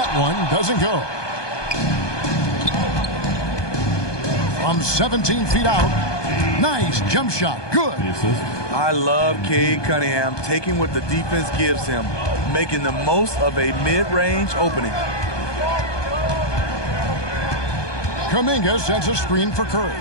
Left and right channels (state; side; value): late; right; 1.2 ms